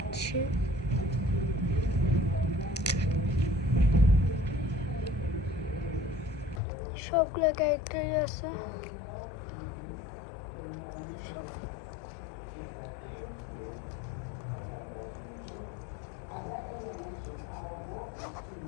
সবগুলো ক্যারেক্টারই আছে।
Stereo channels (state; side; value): drops out; right; at 6.6 s